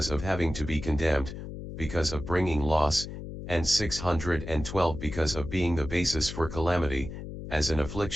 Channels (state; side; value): noise; left; hum, 9 dB below the sound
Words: of having to be condemned, because of bringing loss, and 612 because of being the basis for calamity, as an